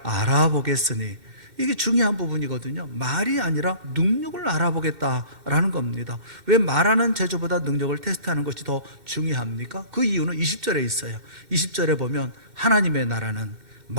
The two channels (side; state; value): left; late; 2.6 ms